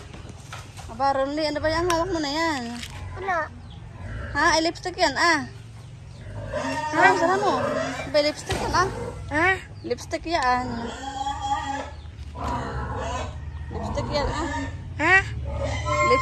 Aba, Ronly, ano ba yan? Hawak mo na yan. Wala. Ha? Ay, lipstick yan, ah. Sana mo. Ba, lipstick yan, ah. Ha? Lipstick yan. Lipstick yan, ah. Ha?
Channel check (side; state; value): both; identical; correlation 1.00